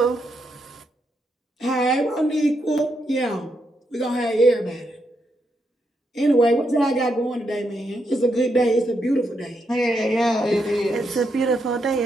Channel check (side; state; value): both; normal; correlation 0.81